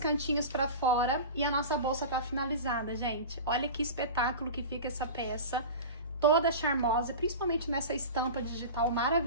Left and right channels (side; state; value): both; inverted; correlation -0.31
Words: pra fora e a nossa bolsa tá finalizada, gente. Olha que espetáculo que fica essa peça, toda charmosa, principalmente nessa estampa digital